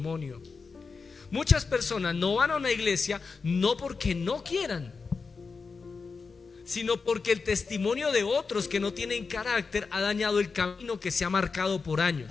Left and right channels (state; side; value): quieter; right; 4.8 dB